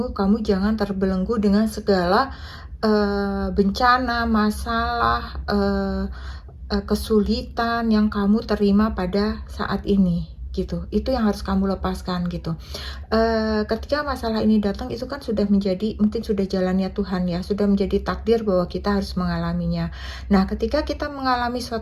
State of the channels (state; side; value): identical; both; correlation 1.00